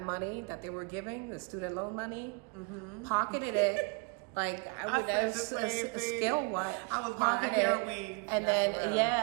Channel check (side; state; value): left; quieter; 33.2 dB